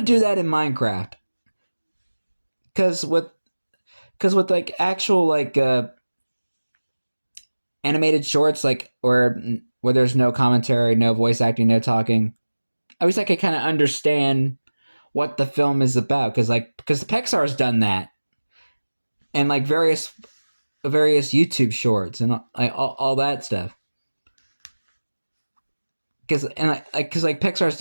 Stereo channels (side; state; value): both; inverted; correlation -1.00